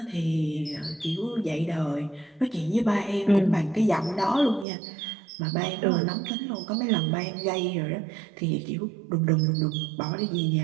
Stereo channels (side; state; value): left; drops out; at 4.7 s